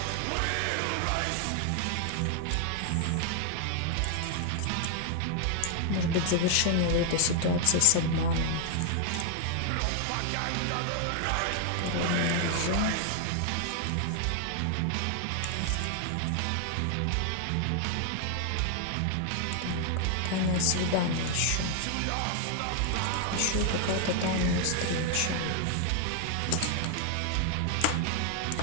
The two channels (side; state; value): both; different; correlation 0.00